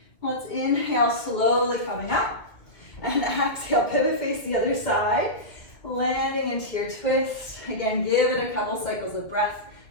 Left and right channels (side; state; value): right; late; 2.4 ms